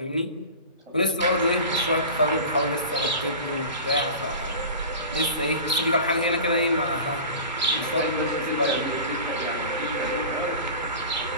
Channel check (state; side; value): inverted; both; correlation -0.35